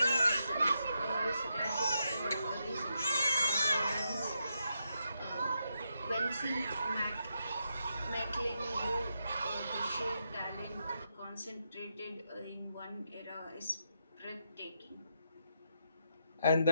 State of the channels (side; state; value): both; inverted; correlation -0.82